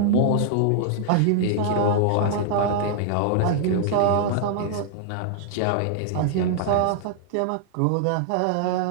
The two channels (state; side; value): different; both; correlation -0.01